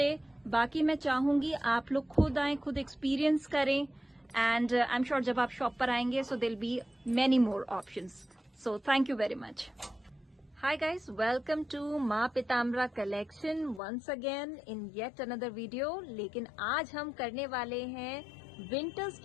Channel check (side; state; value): right; drops out; at 13.8 s